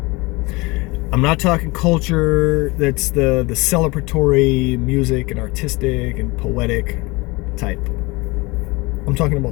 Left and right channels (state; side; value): quieter; right; 24.4 dB